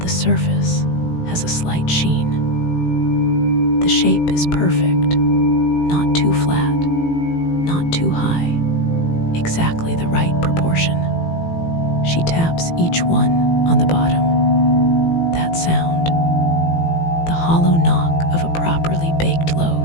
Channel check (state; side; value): late; right; 18 ms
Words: surface has a slight sheen. The shape is perfect, not too flat, not too high, exactly the right proportion. She taps each one on the bottom. That sound, the hollow knock of a properly baked